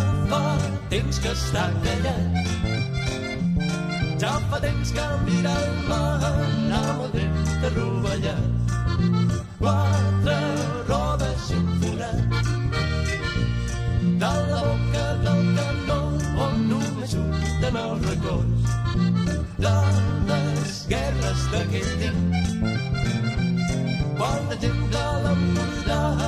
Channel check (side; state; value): both; identical; correlation 1.00